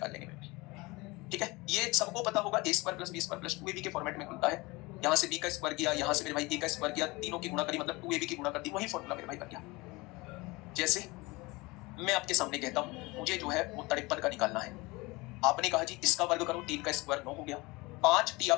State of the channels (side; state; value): right; quieter; 23.4 dB